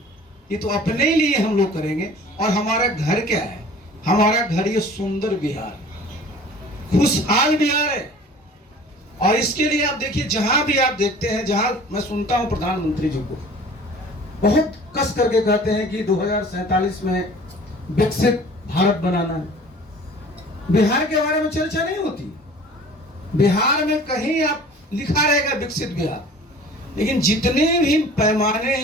ये तो अपने लिए हम लोग करेंगे। और हमारा घर क्या है, हमारा घर ये सुंदर बिहार, खुशहाल बिहार है। और इसके लिए आप देखिए, जहां भी आप देखते हैं, जहां मैं सुनता हूं प्रधानमंत्री जी को बहुत कस करके कहते हैं कि 2047 में विकसित भारत बनाना है, बिहार के बारे में चर्चा नहीं होती। बिहार में कहीं आप लिखा रहेगा विकसित बिहार, लेकिन जितने भी पैमाने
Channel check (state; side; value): normal; both; correlation 0.46